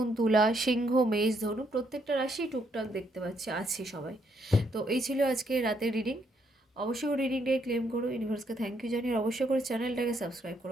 তুলা, সিংহ, মেষ, ধনু, প্রত্যেকটা রাশি টুকটাক দেখতে পাচ্ছি আছে সবাই। তো এই ছিল আজকে রাতের রিডিং। অবশ্যই করে রিডিংটাকে ক্লেম করো, ইউনিভার্সকে থ্যাংক ইউ জানিয়ে অবশ্যই করে চ্যানেলটাকে সাবস্ক্রাইব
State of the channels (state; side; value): normal; both; correlation 0.73